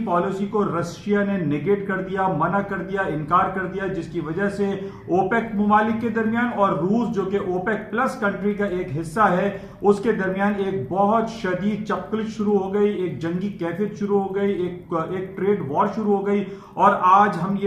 पॉलिसी को रशिया ने नेगेट कर दिया, मना कर दिया, इनकार कर दिया, जिसकी वजह से ओपेक मुमालिक के दरमियान और रूस जो कि ओपेक प्लस कंट्री का एक हिस्सा है उसके दरमियान एक बहुत शदीद चपकलिश शुरू हो गई, एक जंगी कैफियत शुरू हो गई, एक ट्रेड वॉर शुरू हो गई। और आज हम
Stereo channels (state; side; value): identical; both; correlation 1.00